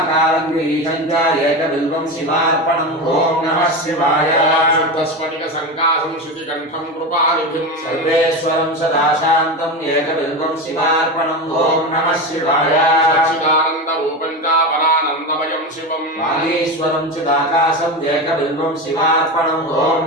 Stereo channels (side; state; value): both; normal; correlation 0.21